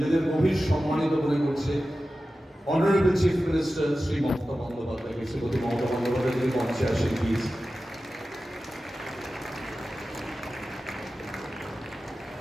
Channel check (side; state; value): both; normal; correlation 0.94